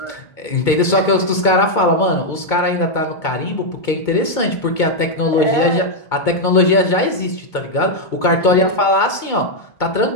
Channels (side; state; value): right; late; 2.2 ms